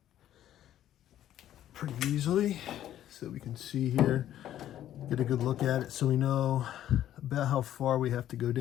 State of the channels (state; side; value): quieter; right; 11.9 dB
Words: pretty easily. So we can see here, get a good look at it so we know about how far we have to go